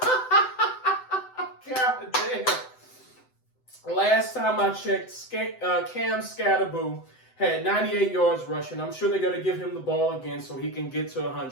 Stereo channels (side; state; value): right; late; 7.9 ms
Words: God damn. Last time I checked, Cam Scatterboo had 98 yards rushing. I'm sure they're going to give him the ball again so he can get to